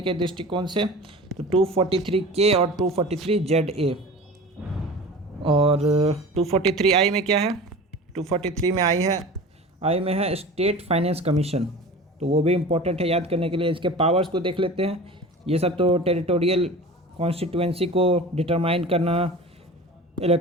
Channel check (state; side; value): normal; both; correlation 0.37